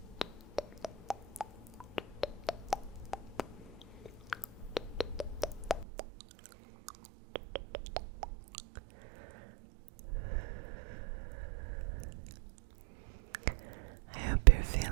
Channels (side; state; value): left; drops out; at 5.9 s